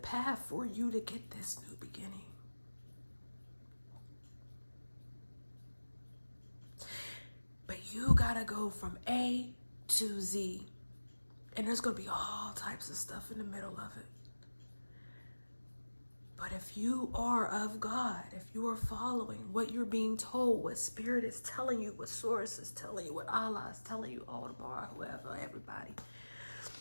for you to get this new beginning. But you gotta go from A to Z. And there's gonna be all types of stuff in the middle of it. But if you are of God, if you are following what you're being told, what Spirit is telling you, what Source is telling you, what Allah is telling you, Aldebar, whoever, everybody,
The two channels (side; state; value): both; inverted; correlation -1.00